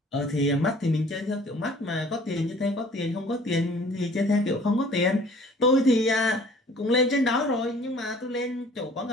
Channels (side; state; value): both; normal; correlation 0.52